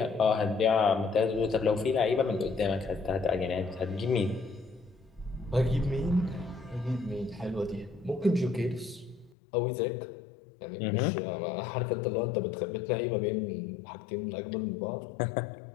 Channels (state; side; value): drops out; right; at 9.3 s